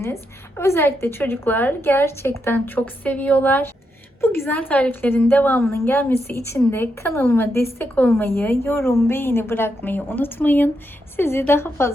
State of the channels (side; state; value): both; normal; correlation 0.82